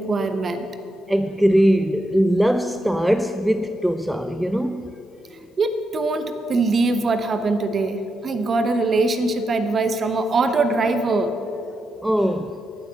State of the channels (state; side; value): normal; both; correlation 0.85